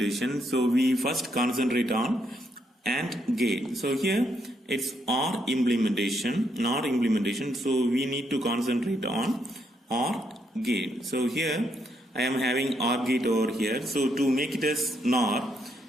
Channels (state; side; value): normal; both; correlation 0.76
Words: so we first concentrate on AND gate. So here it's OR implementation, NOR implementation. So we need to concentrate on OR gate. So here I am having OR gate over here. So to make it as NOR,